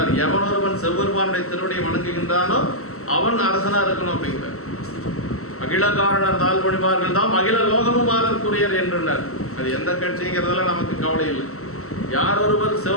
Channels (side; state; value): right; late; 0.63 ms